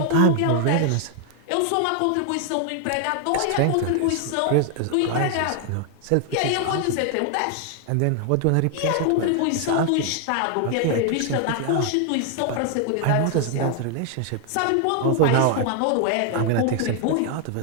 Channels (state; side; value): different; both; correlation 0.00